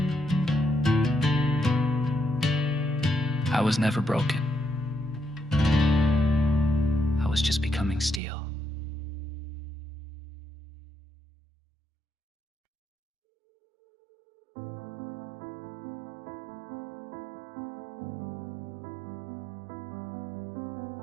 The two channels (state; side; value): drops out; left; at 8.2 s